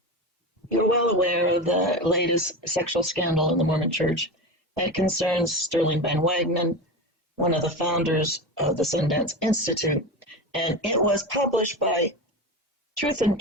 you're well aware of the latest sexual scandal in the Mormon Church that concerns Sterling Van Wagenen, one of the founders of the Sundance Institute. And it was published by Truth and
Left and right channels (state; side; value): normal; both; correlation 0.23